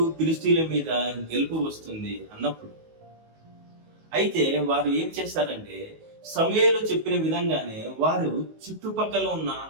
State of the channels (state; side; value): late; left; 19 ms